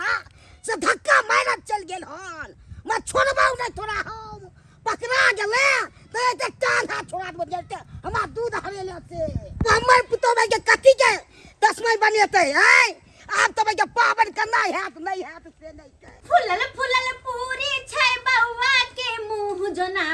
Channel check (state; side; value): identical; both; correlation 1.00